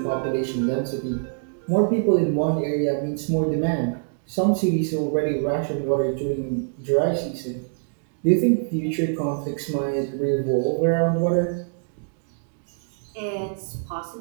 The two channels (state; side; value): silent; left; 62 dB below the other